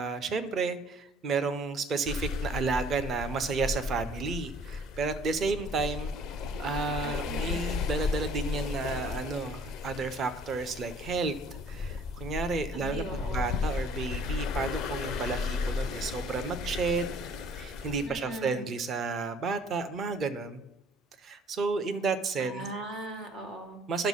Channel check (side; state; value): both; normal; correlation 0.56